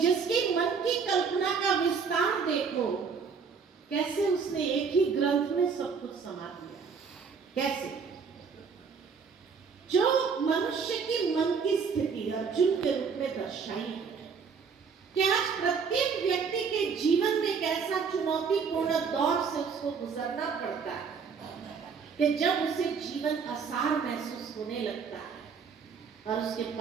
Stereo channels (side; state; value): left; quieter; 5.8 dB